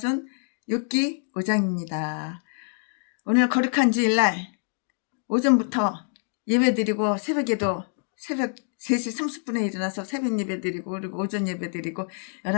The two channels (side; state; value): right; silent; 61 dB below the other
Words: 욥기 5장입니다. 오늘 거룩한 주일날 오전부터 예배드리고 새벽에도 새벽 3시 30분에 일어나서 새벽 예배드리고 그리고 오전 예배드리고